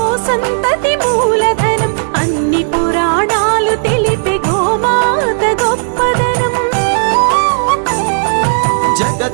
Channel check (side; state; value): left; silent; digital silence